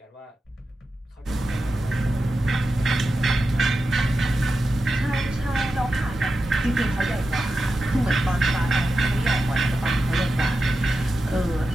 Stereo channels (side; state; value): both; normal; correlation 0.91